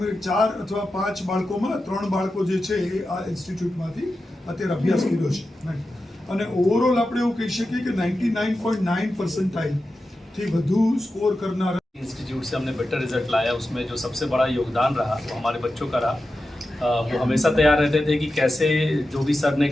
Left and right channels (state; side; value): normal; both; correlation 0.92